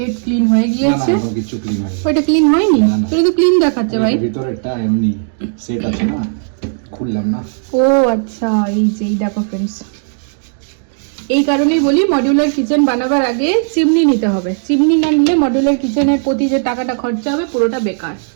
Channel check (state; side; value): silent; left; digital silence